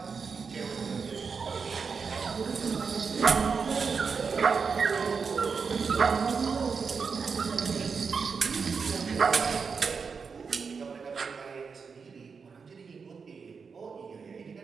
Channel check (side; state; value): left; quieter; 5.5 dB